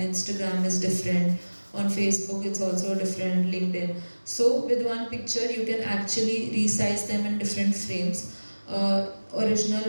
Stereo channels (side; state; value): both; inverted; correlation -1.00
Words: is different. On Facebook, it's also different. LinkedIn. So with one picture, you can actually resize them in different frames.